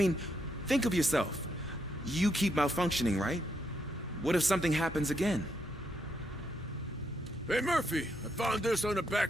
think of yourself. You keep malfunctioning, right? What if something happens again? Hey, Murphy, I found this on the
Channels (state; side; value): normal; both; correlation 0.78